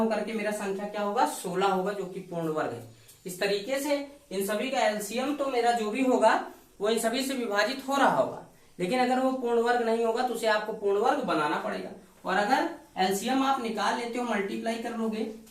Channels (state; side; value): identical; both; correlation 1.00